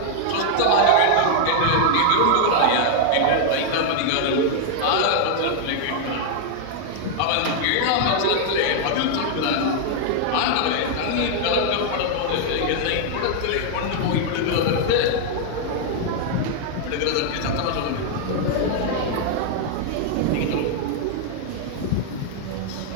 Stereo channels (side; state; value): both; different; correlation 0.00